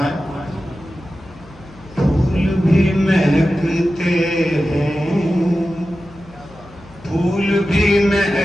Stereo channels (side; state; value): left; noise; hum, 22 dB below the sound